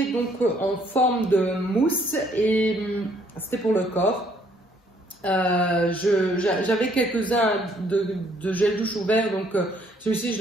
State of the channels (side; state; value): both; normal; correlation 0.65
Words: donc en forme de mousse et c'était pour le corps. J'avais quelques-uns de gel douche ouvert, donc celui-ci je